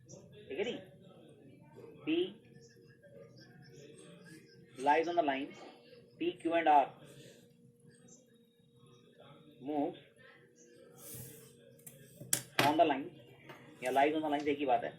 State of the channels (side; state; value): both; identical; correlation 1.00